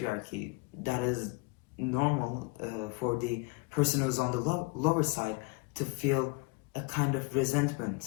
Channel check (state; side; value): quieter; right; 28.8 dB